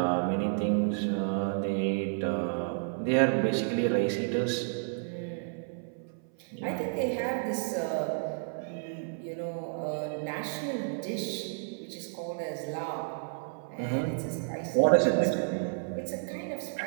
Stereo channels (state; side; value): silent; left; 57 dB below the other